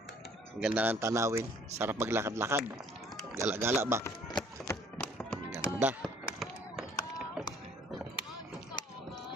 Ang ganda ng tanawin. Sarap maglakad-lakad. Gala-gala ba? Ang ganda.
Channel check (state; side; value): normal; both; correlation 0.58